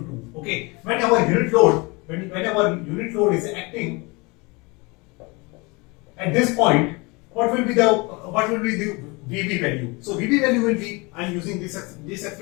Okay, when our unit load is acting at this point, what will be the VB value? So VB value will be, I am using this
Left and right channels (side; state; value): right; quieter; 26.8 dB